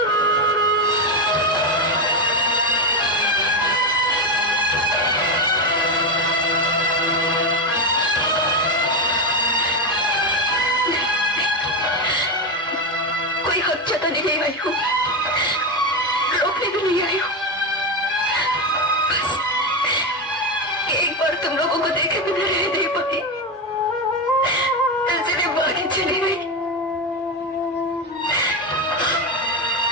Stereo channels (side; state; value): both; normal; correlation 0.12